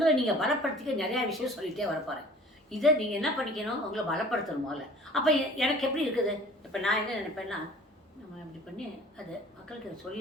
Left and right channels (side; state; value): both; normal; correlation 0.48